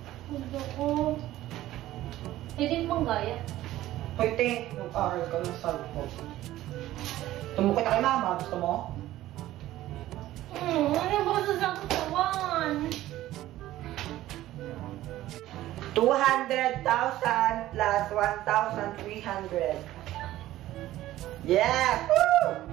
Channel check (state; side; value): quieter; left; 14.9 dB